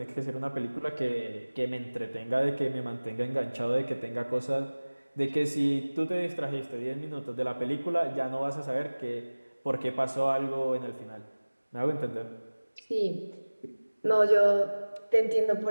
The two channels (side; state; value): both; inverted; correlation -1.00